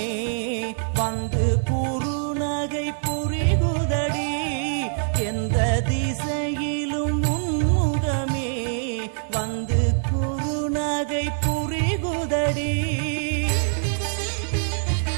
வந்து குறுநகை புரிகுதடி எந்த திசையிலும் உன்முகமே வந்து குறுநகை புரிகுதடி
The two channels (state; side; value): silent; left; digital silence